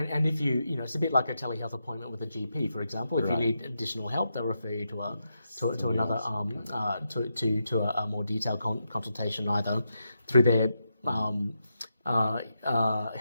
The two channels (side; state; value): both; inverted; correlation -0.85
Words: if it's a bit like a telehealth appointment with a GP, for example. If you need additional help, they'll refer you to another to a more detailed consultation, either through their